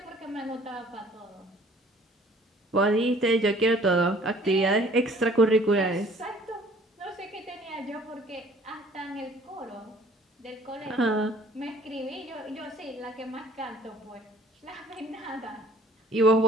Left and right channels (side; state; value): both; normal; correlation 0.54